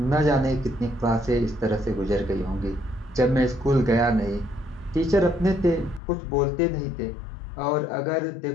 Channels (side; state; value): right; drops out; at 6.0 s